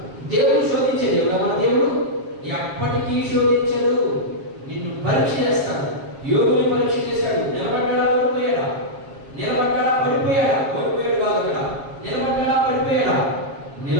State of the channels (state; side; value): late; left; 7.4 ms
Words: దేవుడు శోధించే దేవుడు. మన దేవుడు ఎప్పటికీ శోధించడు, నిన్ను పరీక్ష చేస్తాడు. యోగుని పరీక్ష చేశాడు. నిలబడ్డా ఓడిపోయాడా? నిలబడ్డా పడిపోయాడా? ఓడిపోయాడు కాదు అక్కడ. నిలబడ్డా పడిపోయాడా?